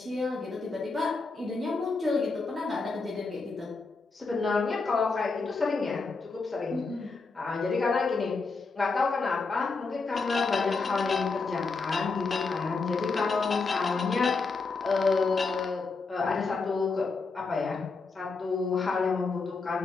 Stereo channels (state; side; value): quieter; right; 4.2 dB